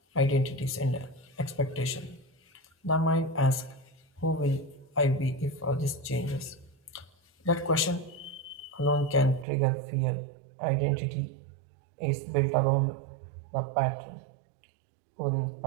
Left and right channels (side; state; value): left; drops out; at 9.5 s